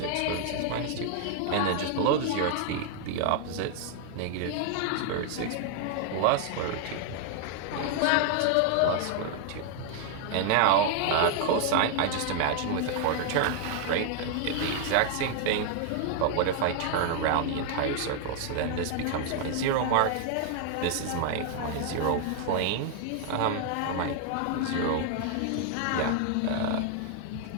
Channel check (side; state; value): both; different; correlation 0.00